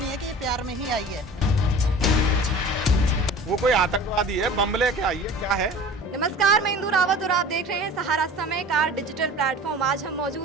है कि ये प्यार में ही आई है। वो कोई आतंकवादी है, बम लेके आई है, क्या है? नमस्कार, मैं इंदु रावत और आप देख रहे हैं सहारा समय का डिजिटल प्लेटफॉर्म। आज हम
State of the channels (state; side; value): normal; both; correlation 0.41